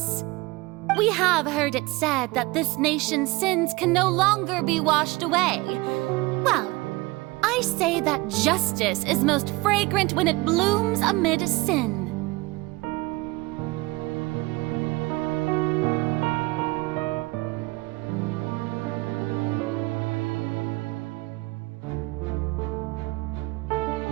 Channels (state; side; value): quieter; left; 22.3 dB